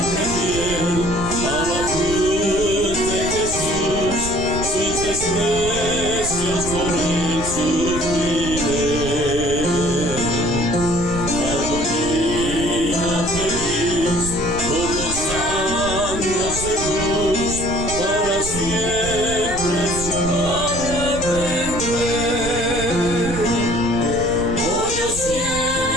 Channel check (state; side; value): noise; right; rumble, 8 dB below the sound